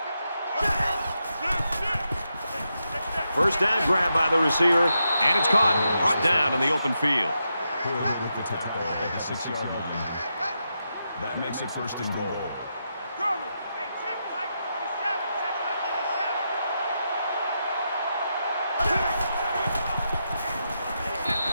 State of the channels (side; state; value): both; inverted; correlation -0.85